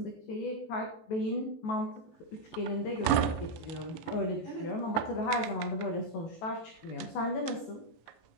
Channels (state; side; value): late; right; 18 ms